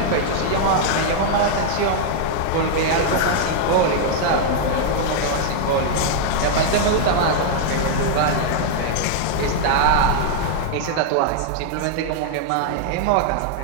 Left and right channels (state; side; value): different; both; correlation 0.00